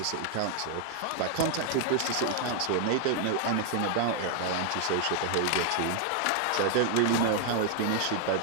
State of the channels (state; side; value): different; both; correlation 0.00